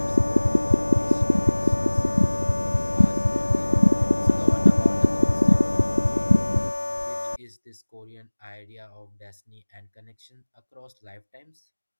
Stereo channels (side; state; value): both; inverted; correlation -1.00